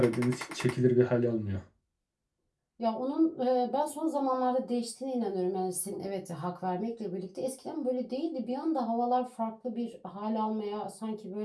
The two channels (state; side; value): identical; both; correlation 1.00